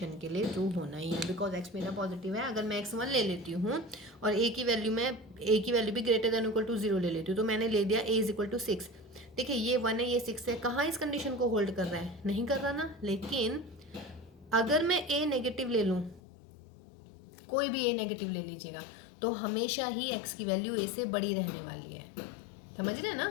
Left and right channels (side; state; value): right; drops out; at 16.2 s